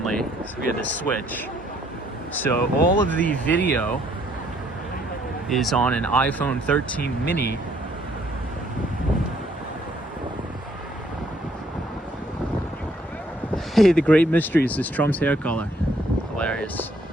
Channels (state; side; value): normal; both; correlation 0.66